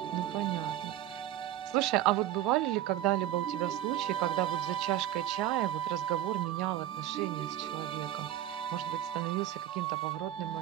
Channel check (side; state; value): left; quieter; 12.5 dB